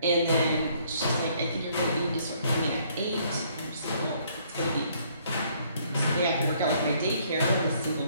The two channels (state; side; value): inverted; both; correlation -0.64